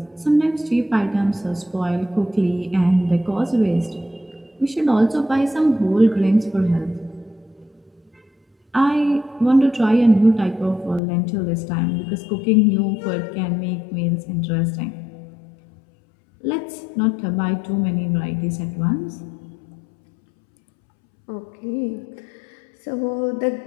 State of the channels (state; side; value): drops out; right; at 11.0 s